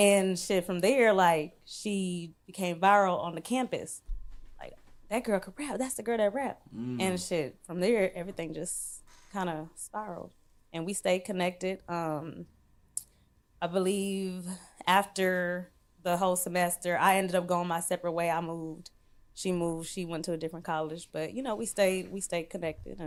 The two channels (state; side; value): identical; both; correlation 1.00